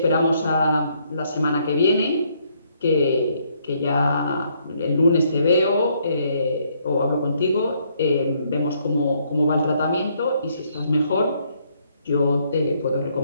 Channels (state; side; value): inverted; both; correlation -0.70